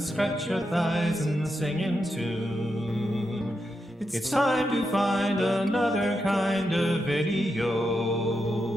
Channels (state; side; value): normal; both; correlation 0.86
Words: scratch your thighs and sing in tune. It's time to find another kind of video,